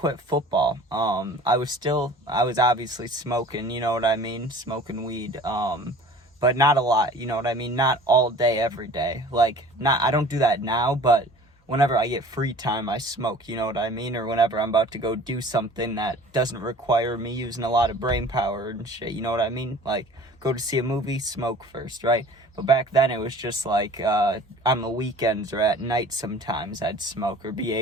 football. I was obviously smoking, you know what I mean? Smoking weed. But not a lot, you know what I mean? Not all day, every day. I don't do that now, but whenever I get free time, I smoke, you know what I mean? Or whenever I'm about to go do something that doesn't require me using a lot of brain power and shit, you know what I mean? Like, go to see a movie, smoke first, right? But back then, it was just like, on the weekends or at night sometimes, I'd smoke or be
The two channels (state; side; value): normal; both; correlation 0.46